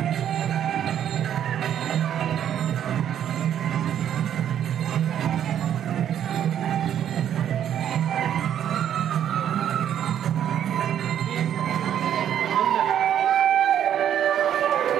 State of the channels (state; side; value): quieter; left; 10.0 dB